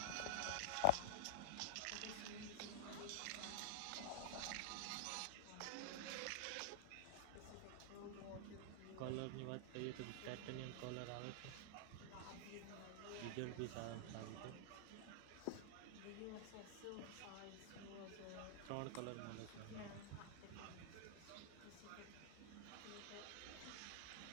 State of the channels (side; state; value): both; different; correlation 0.00